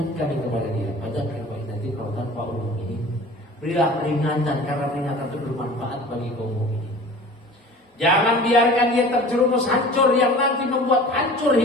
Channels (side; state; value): both; normal; correlation 0.42